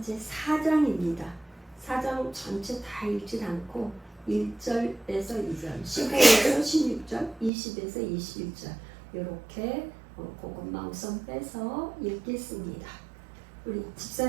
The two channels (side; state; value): left; drops out; at 7.5 s